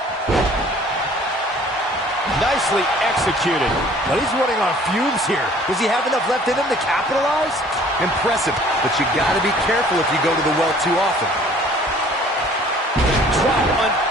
Nicely executed. But he's running on fumes here. Does he have enough left in him to capitalize? Impressive, but you gotta be careful if you go to the well too often. Drop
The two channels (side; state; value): both; normal; correlation 0.53